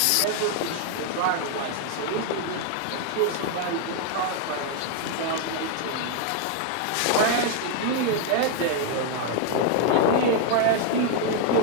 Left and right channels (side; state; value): both; different; correlation 0.00